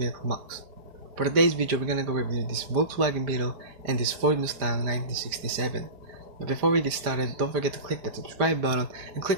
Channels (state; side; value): late; left; 5.0 ms